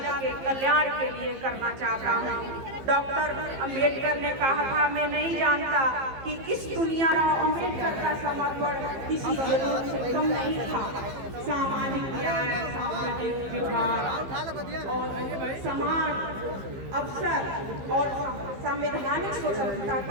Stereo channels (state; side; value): late; left; 15 ms